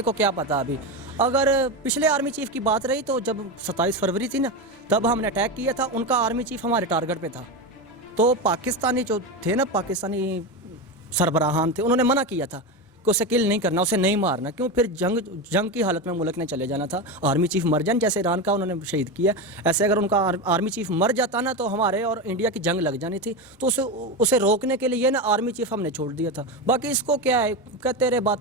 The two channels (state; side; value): normal; both; correlation 0.17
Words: کو کیا پتا ابھی. اگر پچھلے آرمی چیف کی بات رہی تو جب 27 فروری تھی نا تب ہم نے اٹیک کیا تھا, ان کا آرمی چیف ہمارے ٹارگٹ پہ تھا. تو پاکستانی جو تھے نا پاکستانی سربراہان تھے, انہوں نے منع کیا تھا کہ اسے کل نہیں کرنا, اسے نہیں مارنا. کیوں؟ پھر جنگ کی حالت میں ملک نے چلے جانا تھا. آرمی چیف مر جائیں, جیسے ایران کا انہوں نے شہید کیا, ایسے اگر ان کا آرمی چیف مر جاتا نا تو ہمارے اور انڈیا کی جنگ لگ جانی تھی. تو اسے روکنے کے لیے نا آرمی چیف ہم نے چھوڑ دیا تھا. باقی اس کو کیا ہے, کہتے رہے